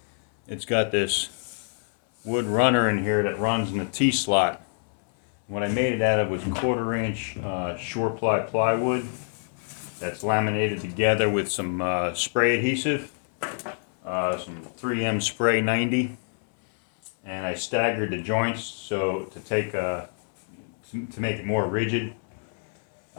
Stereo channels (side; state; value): right; silent; 60 dB below the other